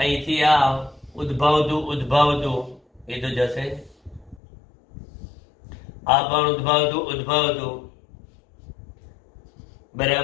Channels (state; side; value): drops out; right; at 4.4 s